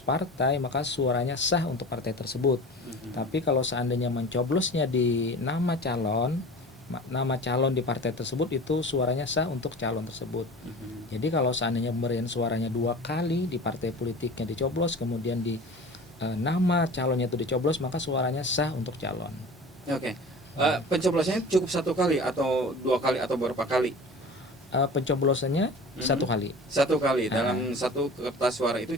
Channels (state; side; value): normal; both; correlation 0.38